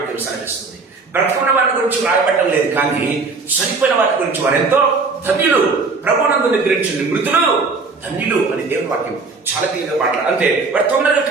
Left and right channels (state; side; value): quieter; left; 4.1 dB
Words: సెలవిస్తుంది. బ్రతుకున్న వారి గురించి రాయబట్టం లేదు, కానీ చనిపోయిన వారి గురించి వారు ఎంతో ధన్యులు, ప్రభునందు నిద్రించింది మృతులు ధన్యులు అని దేవుని వాక్యం చాలా క్లియర్గా మాట్లాడారు. అంటే వారు తొందరగా